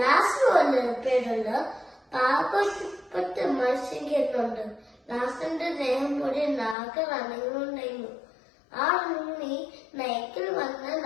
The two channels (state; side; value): drops out; right; at 6.8 s